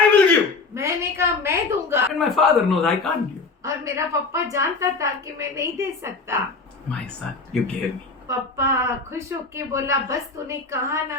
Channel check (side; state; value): right; quieter; 4.1 dB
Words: will give. मैंने कहा मैं दूंगा, And my father knows I can't give. और मेरा पापा जानता था कि मैं नहीं दे सकता। My son, you gave me. पापा खुश होके बोला, बस तूने कहा